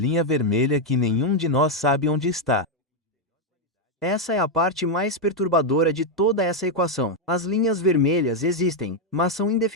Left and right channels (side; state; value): both; normal; correlation 0.01